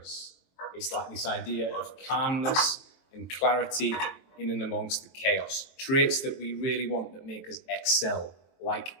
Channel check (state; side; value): late; right; 23 ms